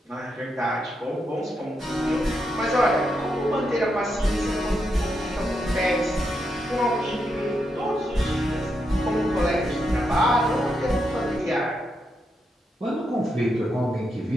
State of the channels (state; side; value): normal; both; correlation 0.83